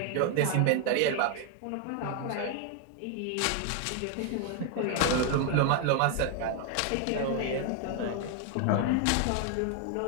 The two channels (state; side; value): different; both; correlation 0.00